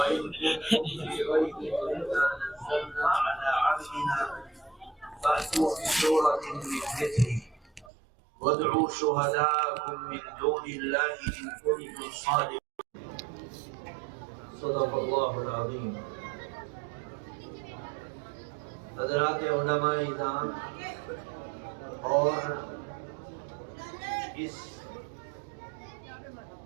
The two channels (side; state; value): left; drops out; at 7.9 s